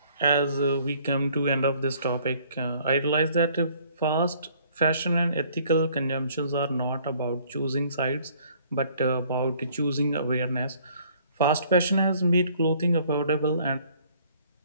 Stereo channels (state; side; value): inverted; both; correlation -0.59